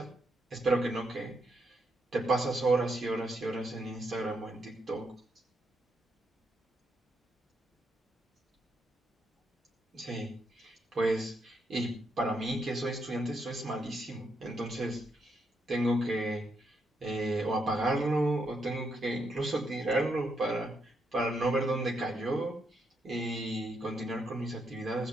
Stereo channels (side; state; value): both; normal; correlation 0.79